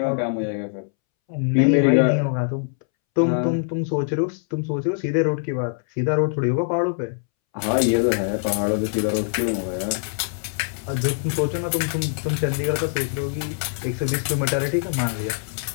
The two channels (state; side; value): silent; right; 63 dB below the other